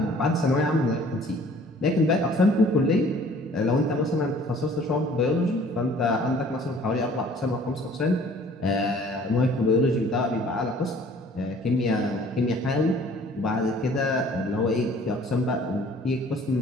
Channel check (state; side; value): normal; both; correlation 0.53